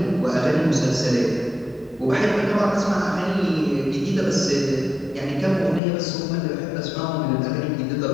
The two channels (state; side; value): drops out; right; at 5.8 s